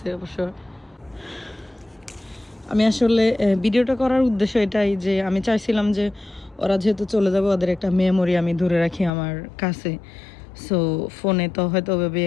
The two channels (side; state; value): right; drops out; at 9.1 s